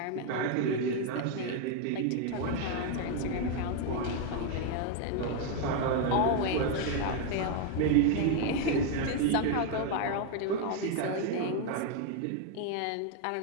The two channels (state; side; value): different; both; correlation 0.01